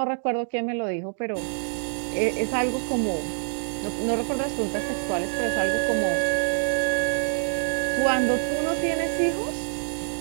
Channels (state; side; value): silent; left; digital silence